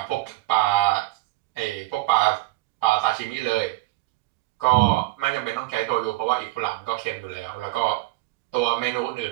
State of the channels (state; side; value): quieter; left; 19.2 dB